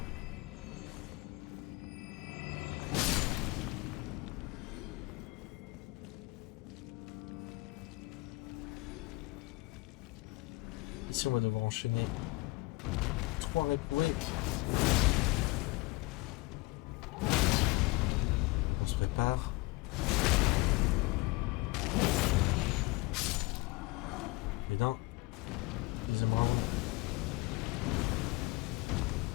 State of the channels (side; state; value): right; quieter; 22.8 dB